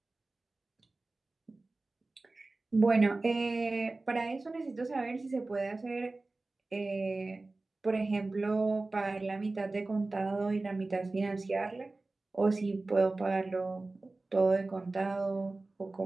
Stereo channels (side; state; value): left; quieter; 3.2 dB